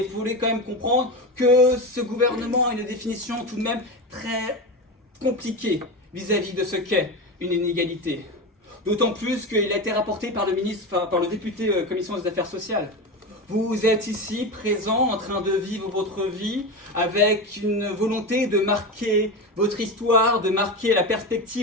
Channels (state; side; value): normal; both; correlation 0.21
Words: vous voulez quand même comprendre que ce gouvernement a une définition tout de même très compliquée vis-à-vis de ce qu'est une inégalité. D'autant plus qu'il a été rapporté par le député Commission des Affaires sociales. Vous êtes ici, présent, en train de vivre votre vie, avec une volonté de marquer votre histoire, de marquer la